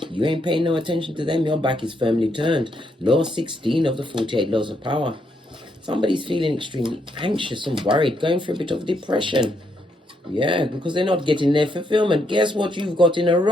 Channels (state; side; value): normal; both; correlation 0.76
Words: ain't paying no attention to them. Your back is firmly turned. Law 16 of the 48 laws of power. Somebody's feeling extremely anxious and worried, going through a bit of depression. Yeah, because they're not getting their fulfillment. Guess what you've got in a